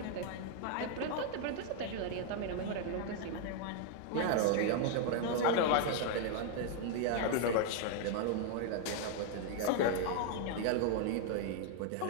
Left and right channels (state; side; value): different; both; correlation 0.00